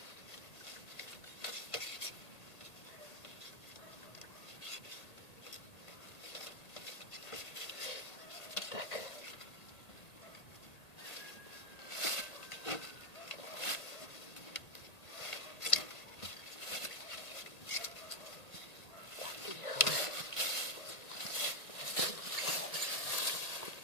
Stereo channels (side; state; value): right; late; 1.8 ms